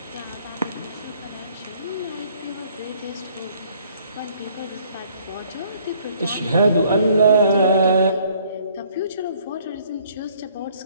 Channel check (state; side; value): inverted; both; correlation -0.60